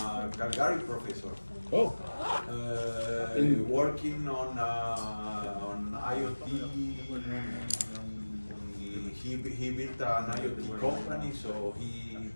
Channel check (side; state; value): both; inverted; correlation -1.00